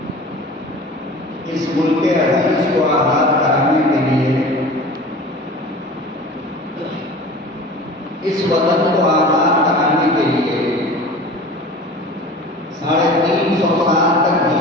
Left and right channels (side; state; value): both; normal; correlation 0.39